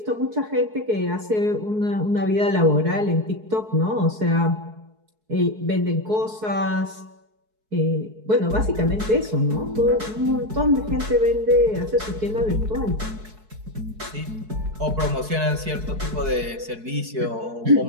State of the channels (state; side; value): late; left; 4.6 ms